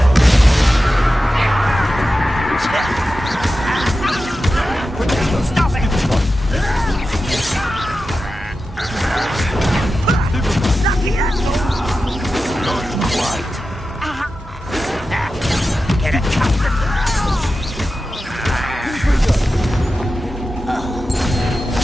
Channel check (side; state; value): both; normal; correlation 0.92